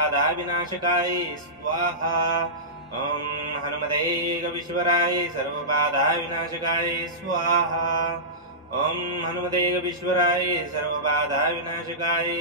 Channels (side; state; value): both; normal; correlation -0.18